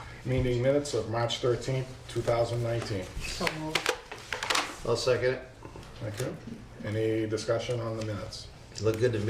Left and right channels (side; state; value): both; identical; correlation 1.00